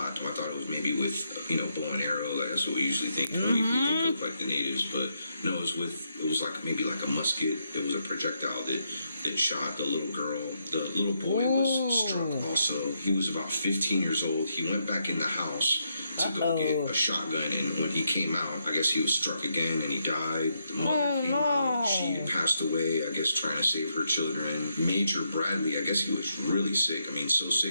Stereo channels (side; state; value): both; inverted; correlation -0.79